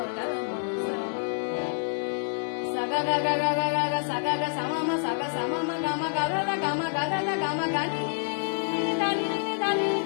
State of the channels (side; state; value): right; silent; 56 dB below the other